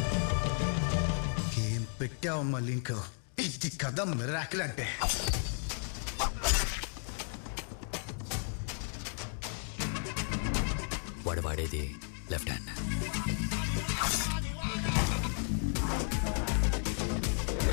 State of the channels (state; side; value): silent; right; 55 dB below the other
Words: ఏం పెట్టావమ్మా లింక్? ఇది కథ మిరాకిల్ అంటే. వాడు వాడేది లెఫ్ట్ హ్యాండ్.